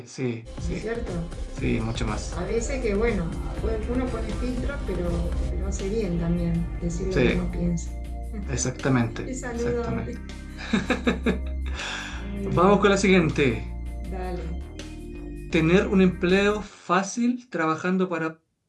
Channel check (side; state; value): both; identical; correlation 1.00